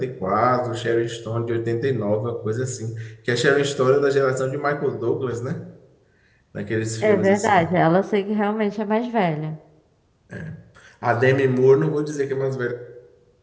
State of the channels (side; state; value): both; identical; correlation 1.00